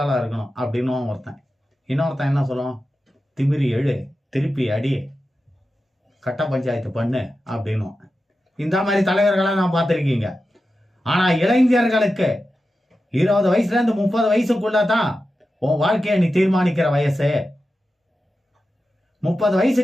ஆளா இருக்கணும் அப்படின்னு ஒருத்தன். இன்னொருத்தன் என்ன சொல்லுவான், திமிரி எழு, திருப்பி அடி, கட்ட பஞ்சாயத்து பண்ணு அப்படின்னு. இந்த மாதிரி தலைவர்களை நான் பார்த்திருக்கீங்க. ஆனா இளைஞர்களுக்கு 20 வயசுல இருந்து 30 வயசுக்குள்ளதான் உன் வாழ்க்கையை நீ தீர்மானிக்கிற வயசு. 30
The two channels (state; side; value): normal; both; correlation 0.92